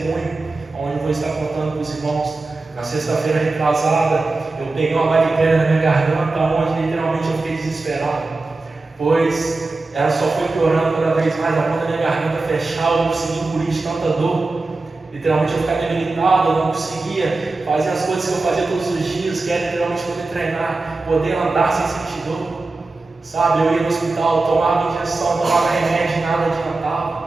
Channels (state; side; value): quieter; left; 3.4 dB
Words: onde eu vou estar contando para os irmãos. Na sexta-feira retrasada, eu peguei uma bactéria na minha garganta, onde literalmente eu fiquei desesperado, pois ela só foi piorando cada vez mais, a ponta da minha garganta fechar, eu não conseguia engolir de tanta dor. Literalmente eu ficava debilitado, eu não conseguia fazer as coisas que eu fazia todos os dias, que era literalmente poder treinar, poder andar sem sentir dor. Sabe, eu ia no hospital, tomava injeção, tomava remédio, nada